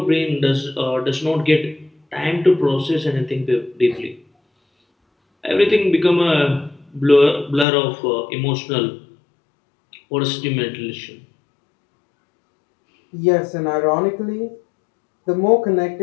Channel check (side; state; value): right; drops out; at 7.7 s